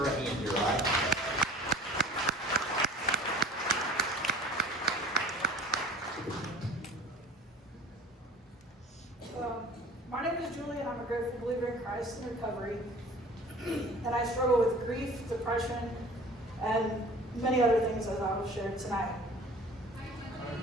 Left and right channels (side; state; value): both; normal; correlation 0.45